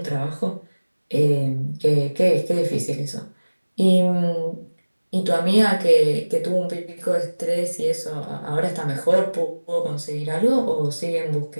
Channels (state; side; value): inverted; both; correlation -1.00